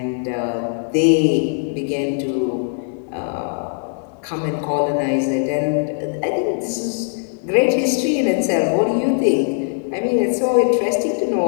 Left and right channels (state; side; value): silent; right; 66 dB below the other